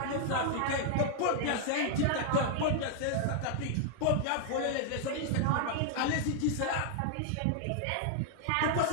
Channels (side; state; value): both; different; correlation 0.00